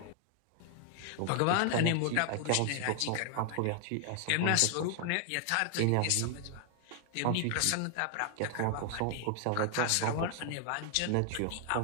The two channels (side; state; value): both; different; correlation 0.00